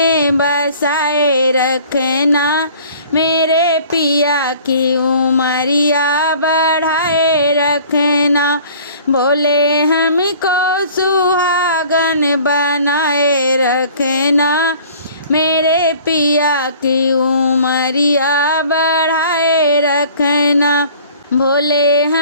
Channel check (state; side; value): inverted; both; correlation -0.50